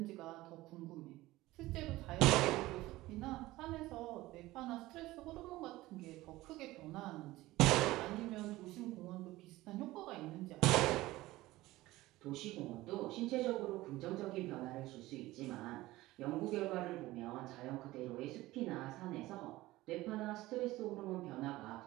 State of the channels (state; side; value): quieter; left; 18.0 dB